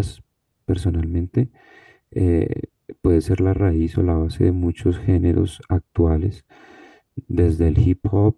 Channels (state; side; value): identical; both; correlation 1.00